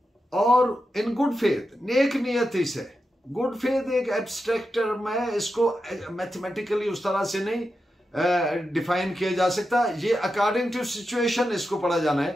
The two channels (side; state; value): both; normal; correlation 0.89